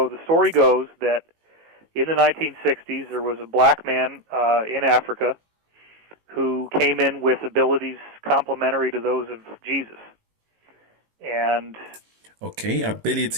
the story goes that in the 1960s, there was a black man in Africa who came in with abilities complementary to those of Jesus. And okay,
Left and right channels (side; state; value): left; late; 18 ms